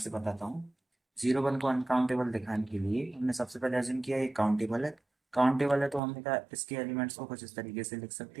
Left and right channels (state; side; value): drops out; left; at 6.0 s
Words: बताता हूँ। 0 1 को अनकाउंटेबल दिखाने के लिए हमने सबसे पहले अज्यूम किया ये काउंटेबल है। काउंटेबल है तो हमने कहा इसके एलिमेंट्स को कुछ इस तरीके से लिख